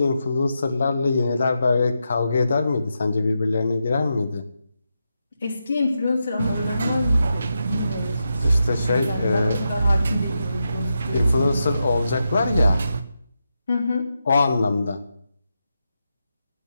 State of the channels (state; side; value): inverted; both; correlation -0.86